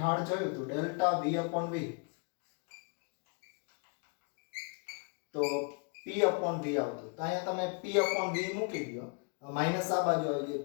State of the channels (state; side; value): quieter; right; 35.8 dB